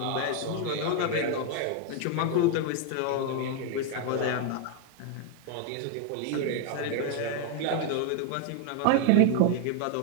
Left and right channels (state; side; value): different; both; correlation 0.00